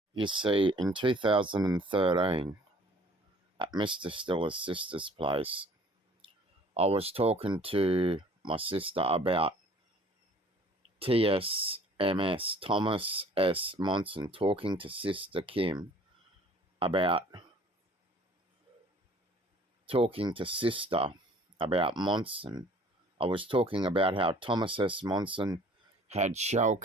You see, in 2013, at Mr. Stiller's sister's place, I was talking to my sister about TSMS, Thomas S. Monson, talking to Sister Kim about Monson. I was talking about how Thomas S. Monson had shell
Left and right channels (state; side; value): normal; both; correlation 0.53